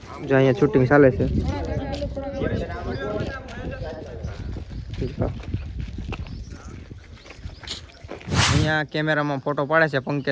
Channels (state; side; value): identical; both; correlation 1.00